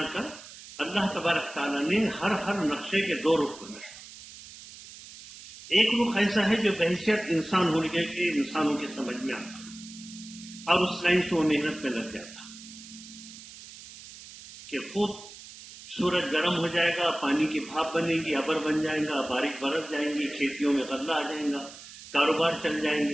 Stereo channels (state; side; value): noise; right; hiss, 16 dB below the sound